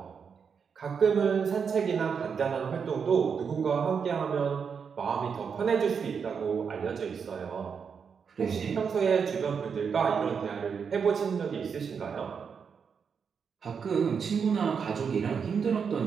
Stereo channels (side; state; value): left; quieter; 6.4 dB